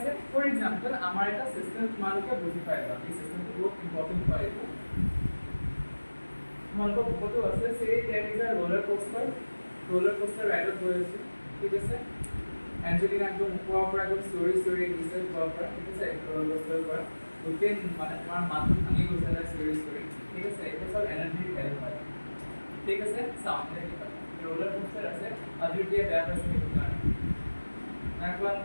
ফৰ এক্সাম্পল আমাৰ এটা সিস্টেম তোমালোকে বুজি পাইবা এই সিস্টেমটো বহুত ইম্পৰ্টেন্ট হয় এইটো তোমালোকৰ বুকতো আছে say that is a roller coaster ৰাইডত গৈ আছে ঠিক আছে এঞ্জেলিনা একদম ওপৰৰ পৰা একদম ষ্টৰি দিছে ওপৰৰ পৰা ঠিক আছে roller coaster পৰা গোটেই মানে তোমাৰ মাথা ভাঙি গৈছে না ষ্টৰি ঠিক আছে এইটো সব এনাৰ্জি হেল্প হয় ঠিক আছে সামনে কিবা roller coaster আছে অদ্বিতীয় বেয়া পাইছে সেইটো কাৰণে নাকোৱা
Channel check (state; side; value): inverted; both; correlation -1.00